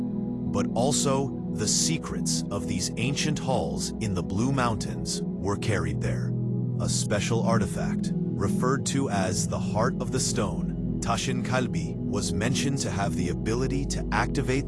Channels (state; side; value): identical; both; correlation 1.00